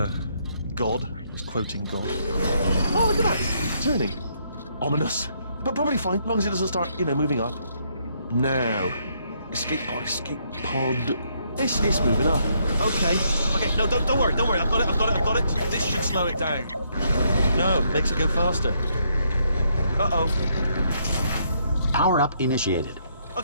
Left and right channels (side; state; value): both; inverted; correlation -0.73